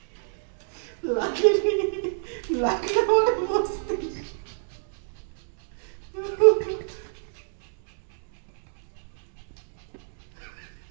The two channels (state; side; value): silent; left; 61 dB below the other